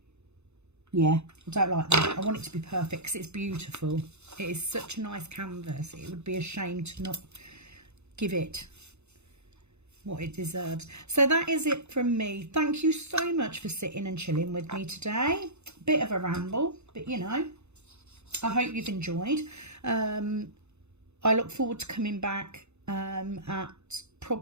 Yeah, I don't like that. I want it to be perfect because it's beautiful. It is such a nice canvas. It would be a shame to not give it what it deserves. So that is it from me. Thank you so much for sitting and chilling with me today. Bit of a ramble, but you know, I hope you've enjoyed. I look forward to coming back at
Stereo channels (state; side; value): late; left; 0.81 ms